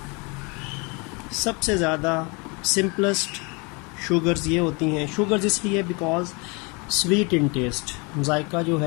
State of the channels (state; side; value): quieter; right; 29.8 dB